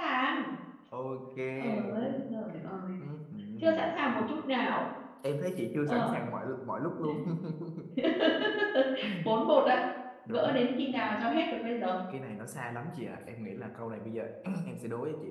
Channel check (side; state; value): both; identical; correlation 1.00